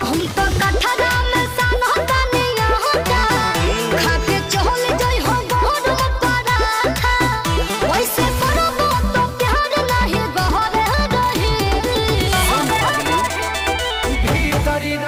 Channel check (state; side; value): identical; both; correlation 1.00